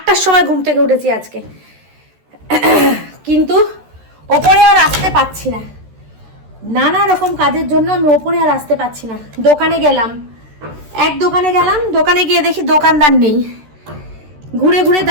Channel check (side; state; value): left; late; 13 ms